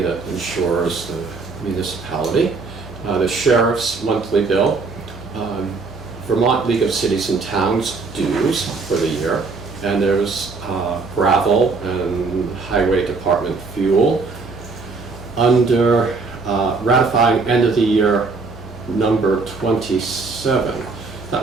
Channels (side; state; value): left; quieter; 4.2 dB